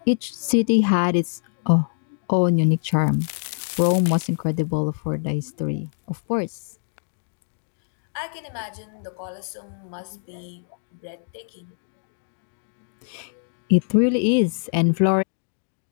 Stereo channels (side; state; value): right; silent; digital silence